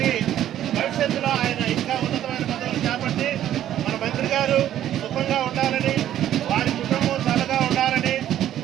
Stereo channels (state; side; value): quieter; left; 11.7 dB